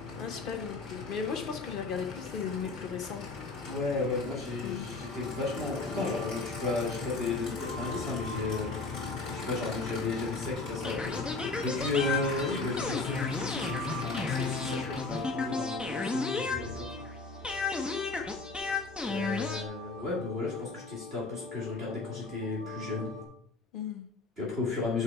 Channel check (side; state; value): right; quieter; 3.5 dB